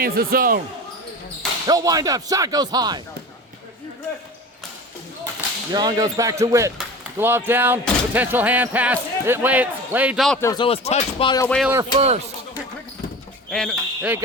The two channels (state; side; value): normal; both; correlation 0.34